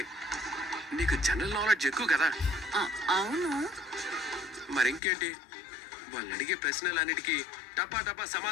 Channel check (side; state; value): right; drops out; at 5.0 s